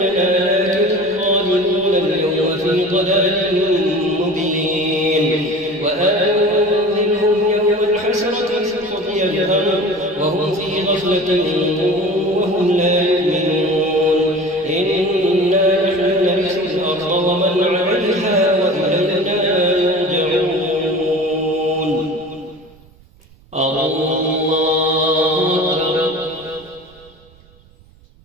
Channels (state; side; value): noise; right; rumble, 27 dB below the sound